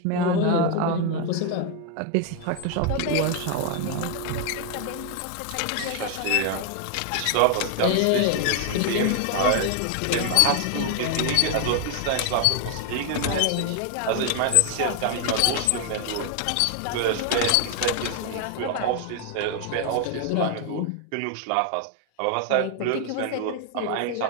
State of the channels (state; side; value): different; both; correlation 0.00